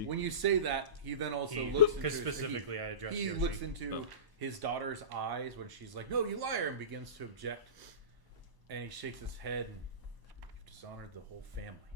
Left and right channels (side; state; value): left; late; 1.0 ms